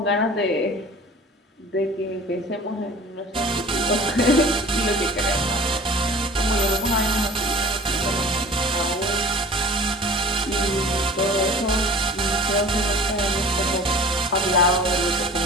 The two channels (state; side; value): normal; both; correlation 0.43